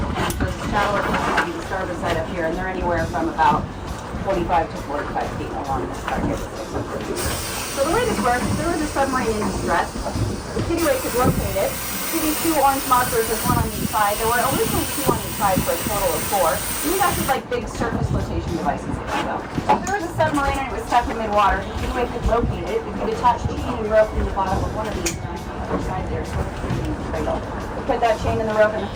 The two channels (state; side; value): identical; both; correlation 1.00